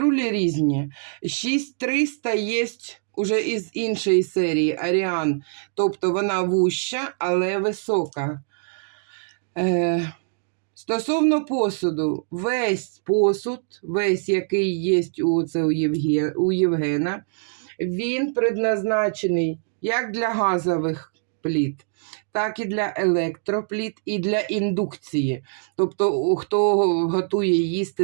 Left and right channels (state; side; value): silent; left; digital silence